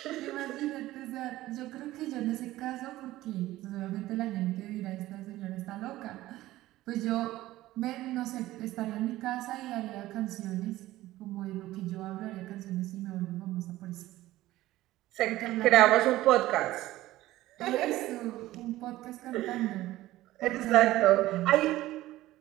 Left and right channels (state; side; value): quieter; left; 16.2 dB